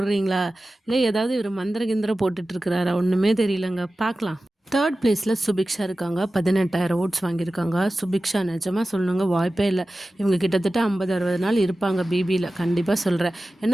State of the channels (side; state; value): both; normal; correlation 0.95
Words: இல்லை ஏதாவது இவர் மந்திர கிந்திரம் போட்டுட்ருக்கிறாரா? ஒன்றுமே தெரியலங்க. பார்க்கலாம். 3rd பிளேஸில் சுபிக்ஷா இருக்காங்க. 18,000 ஓட்ஸ் வாங்கியிருக்காங்க. சுபிக்ஷா நிஜமாக சொல்லணுங்க, வாய்ப்பே இல்லை. இவங்க கிட்டத்தட்ட 50-60 நாள் இருப்பாங்க பிபியில். கண்டிப்பாக சொல்கிறேன்.